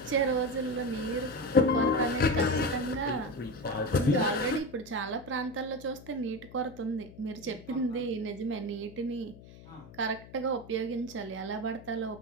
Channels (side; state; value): left; noise; hum, 19 dB below the sound